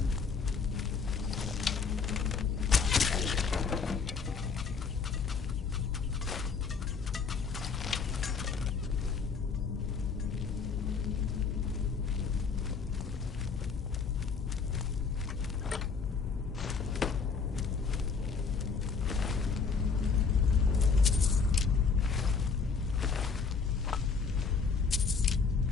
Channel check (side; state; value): right; quieter; 5.3 dB